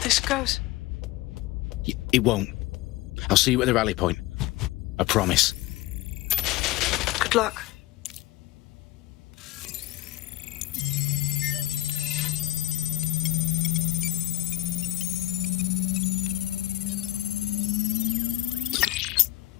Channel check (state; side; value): quieter; right; 16.5 dB